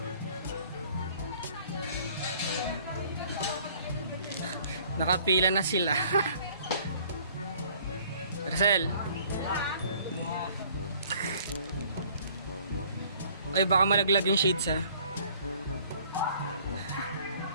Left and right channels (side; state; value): both; inverted; correlation -0.56